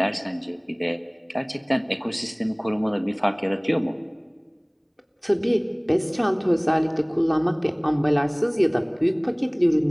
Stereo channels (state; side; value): identical; both; correlation 1.00